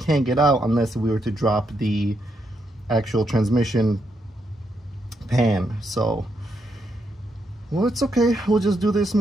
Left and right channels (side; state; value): both; normal; correlation 0.79